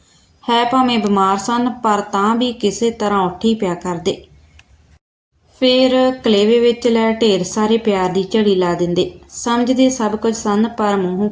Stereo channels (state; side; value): identical; both; correlation 1.00